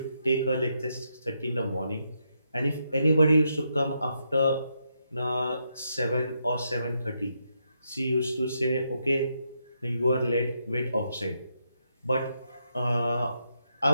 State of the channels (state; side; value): inverted; both; correlation -0.80